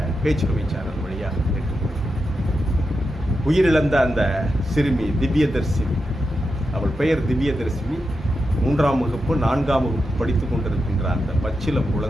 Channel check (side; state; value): both; normal; correlation 0.88